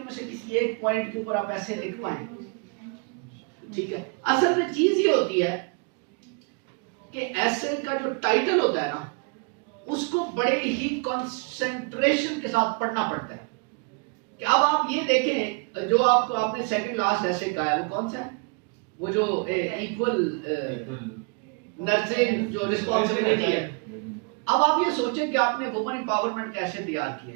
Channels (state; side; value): quieter; left; 34.6 dB